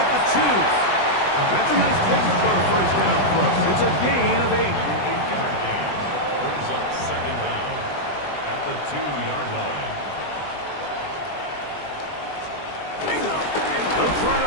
the 2. That's a nice pickup on a first down throw. It's a gain of 8. 8-yard gain brings up second down at the 2-yard line. They'll try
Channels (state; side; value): late; right; 20 ms